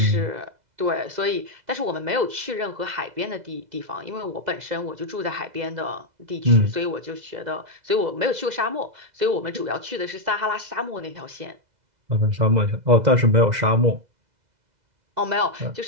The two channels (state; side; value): late; left; 2.0 ms